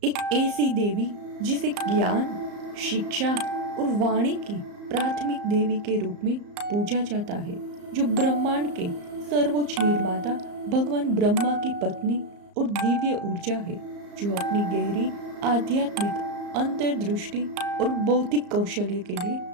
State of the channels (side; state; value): left; late; 34 ms